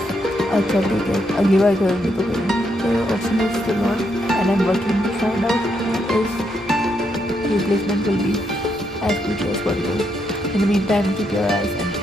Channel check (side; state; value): both; normal; correlation 0.78